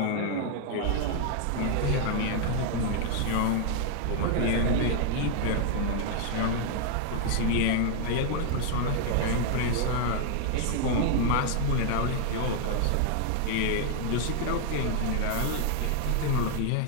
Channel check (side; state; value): both; different; correlation 0.00